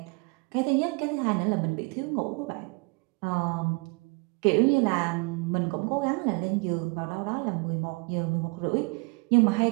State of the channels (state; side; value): quieter; left; 29.9 dB